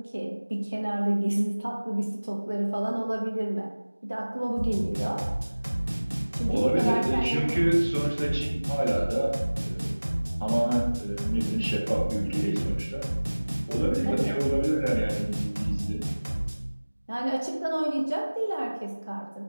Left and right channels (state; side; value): inverted; both; correlation -1.00